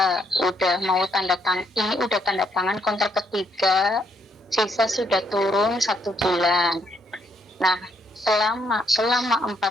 udah mau tanda tangan, ini udah tanda tangan kontrak ketiga, sisa sudah turun 1 bulan. Nah, selama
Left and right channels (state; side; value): normal; both; correlation 0.73